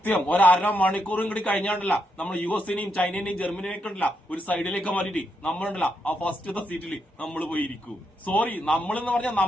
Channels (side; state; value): both; normal; correlation 0.81